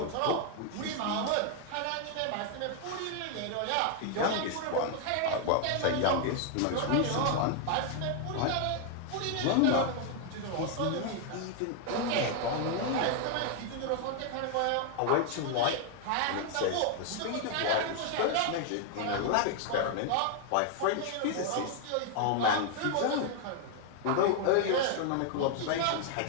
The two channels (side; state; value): both; different; correlation 0.00